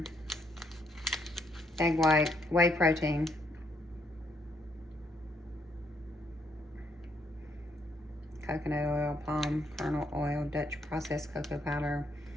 Egg white, whey protein. Coconut oil, palm kernel oil, Dutch processed cocoa powder,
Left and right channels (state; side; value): normal; both; correlation 0.73